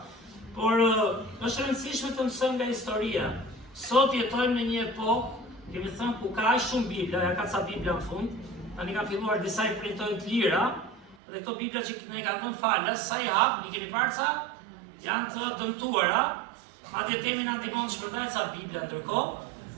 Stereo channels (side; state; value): left; drops out; at 11.2 s